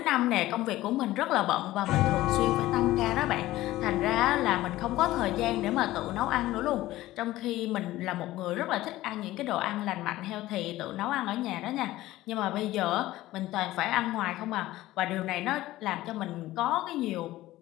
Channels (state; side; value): quieter; right; 16.3 dB